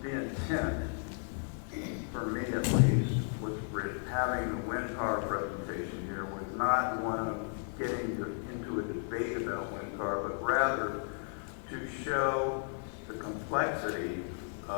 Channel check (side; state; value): right; silent; 55 dB below the other